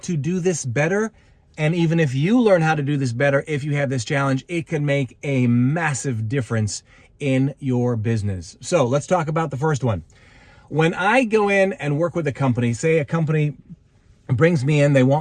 do this better, and even if you learn how to do this better, if you have this challenge, it can make a massive difference in your business. So let's talk about the first one. When I go in and work with a company, say a company brings me in, they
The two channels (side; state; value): both; identical; correlation 1.00